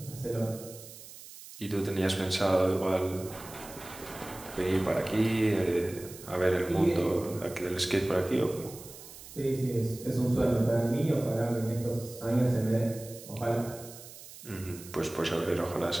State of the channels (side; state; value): right; noise; hiss, 16 dB below the sound